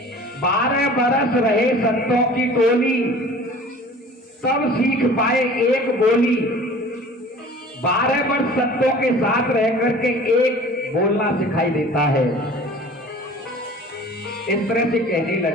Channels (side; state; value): both; normal; correlation 0.44